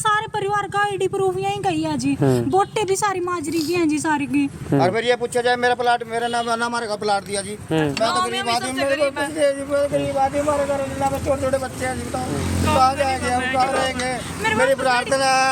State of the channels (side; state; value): both; identical; correlation 1.00